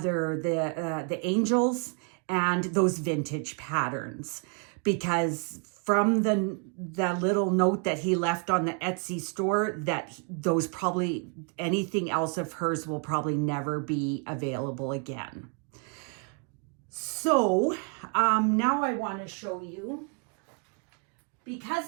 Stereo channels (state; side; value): quieter; left; 36.7 dB